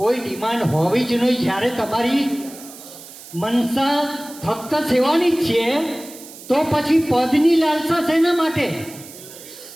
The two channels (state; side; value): noise; right; hiss, 17 dB below the sound